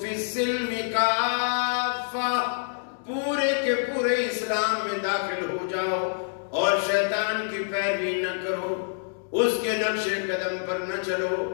السلم کافہ, پورے کے پورے اسلام میں داخل ہو جاؤ اور شیطان کی پیروی نہ کرو, اس کے نقش قدم پر نہ چلو.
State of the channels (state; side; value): silent; right; digital silence